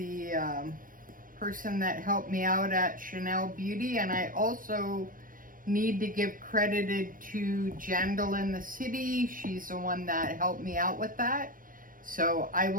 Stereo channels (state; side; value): late; left; 0.40 ms